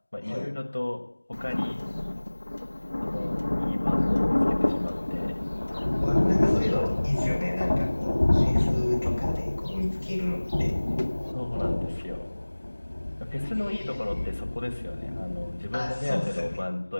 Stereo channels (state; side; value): inverted; both; correlation -1.00